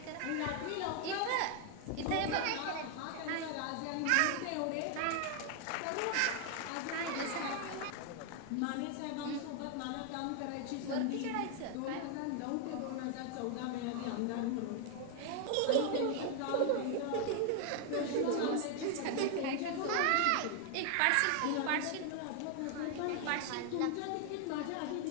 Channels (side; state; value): both; different; correlation 0.00